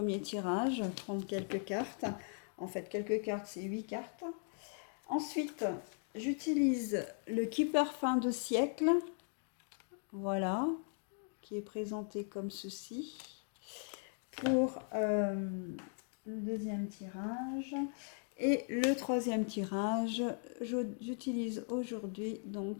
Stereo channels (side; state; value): right; silent; 52 dB below the other